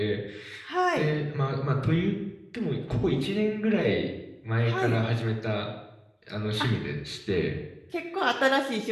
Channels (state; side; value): identical; both; correlation 1.00